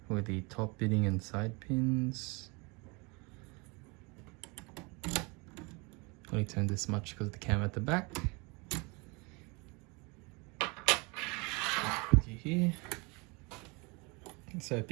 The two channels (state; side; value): quieter; left; 28.8 dB